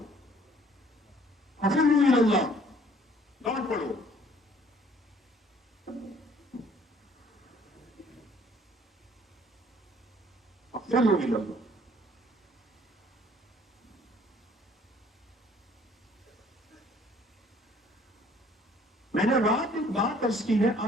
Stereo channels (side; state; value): both; normal; correlation 0.58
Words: हफिज़ु इल्लल्लाह, दौड़ पड़ो। हफिज़ु इल्लल्लाह। मैंने रात एक बात अर्ज की है,